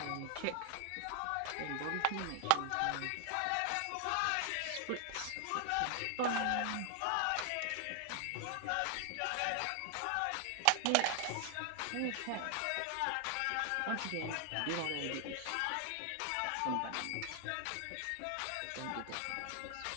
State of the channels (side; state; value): both; different; correlation 0.00